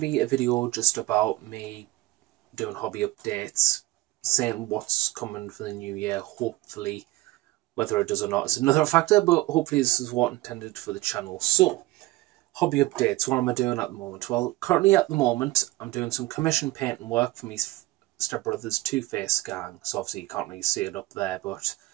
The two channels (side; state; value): left; quieter; 18.5 dB